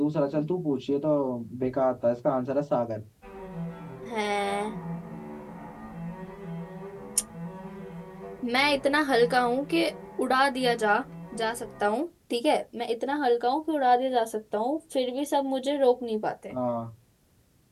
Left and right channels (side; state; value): both; identical; correlation 1.00